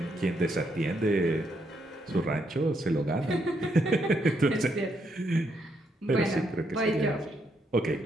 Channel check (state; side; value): normal; both; correlation 0.77